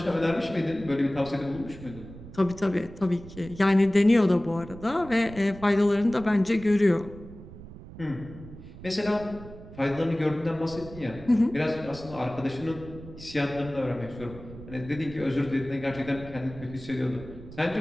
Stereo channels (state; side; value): noise; right; rumble, 15 dB below the sound